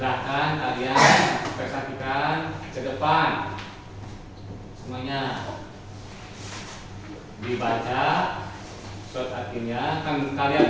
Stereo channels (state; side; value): identical; both; correlation 1.00